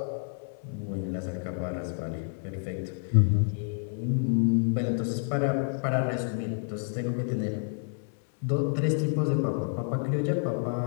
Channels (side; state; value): right; silent; 56 dB below the other